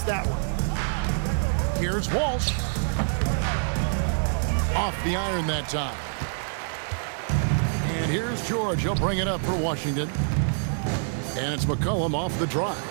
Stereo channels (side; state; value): left; silent; digital silence